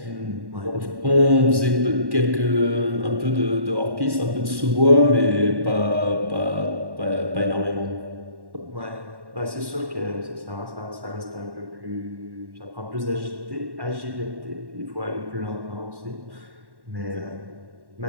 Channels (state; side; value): late; left; 1.1 ms